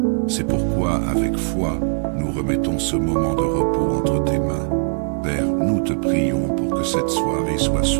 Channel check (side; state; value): left; silent; digital silence